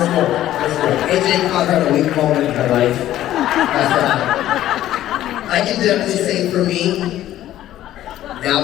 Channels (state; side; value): quieter; right; 13.2 dB